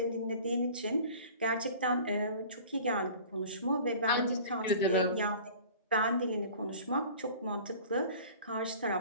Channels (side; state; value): both; inverted; correlation -0.44